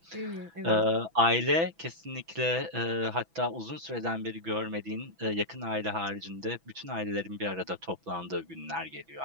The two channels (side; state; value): left; late; 6.0 ms